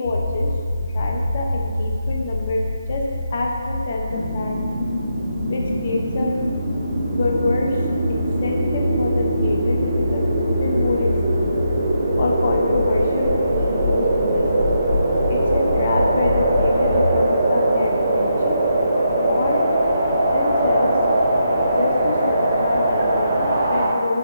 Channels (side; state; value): both; inverted; correlation -0.80